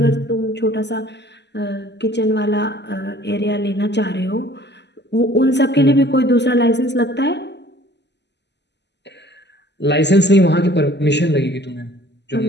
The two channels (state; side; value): late; right; 0.50 ms